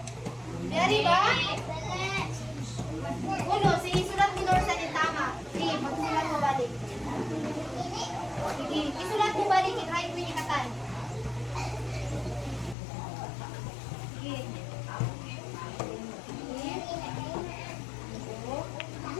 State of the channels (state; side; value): drops out; right; at 12.8 s